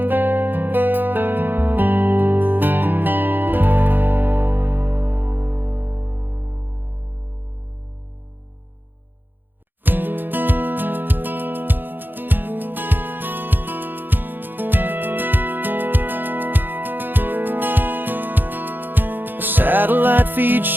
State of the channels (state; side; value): late; left; 0.094 ms